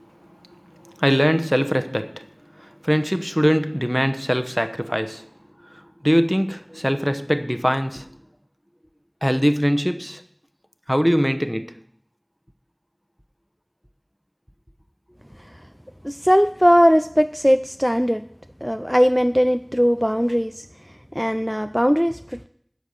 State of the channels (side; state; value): both; identical; correlation 1.00